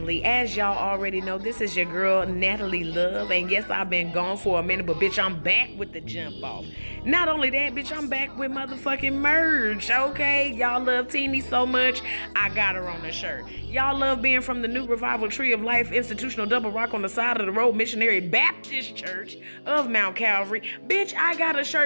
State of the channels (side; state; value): both; inverted; correlation -1.00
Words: As y'all already know, this is your girl, Natalie Love. And yes, I've been gone for a minute, but bitch, I'm back with the jump off. Not only that, bitch, I'm back with motherfucking merch, okay? Y'all love Teeny so much, I got her on the shirt. Y'all love being from the New Revival Tree of Life Institutional Double Rock on the side of the road Missionary Baptist Church of Mount Calvary. Bitch, I got a